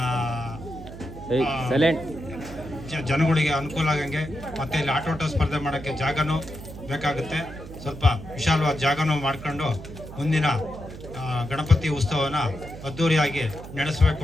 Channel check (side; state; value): right; noise; hum, 13 dB below the sound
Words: ಜನಗಳಿಗೆ ಅನುಕೂಲ ಆಗಂಗೆ, ಮತ್ತು ಇಲ್ಲಿ ಆಟೋಟ ಸ್ಪರ್ಧೆ ಮಾಡೋಕ್ಕೆ ಜಾಗನೂ ಬೇಕಾಗುತ್ತೆ. ಸ್ವಲ್ಪ ವಿಶಾಲವಾದ ಜಾಗನೂ ಮಾಡ್ಕೊಂಡು ಮುಂದಿನ ಗಣಪತಿ ಉತ್ಸವನ ಅದ್ಧೂರಿಯಾಗಿ ನಡೆಸಬೇಕು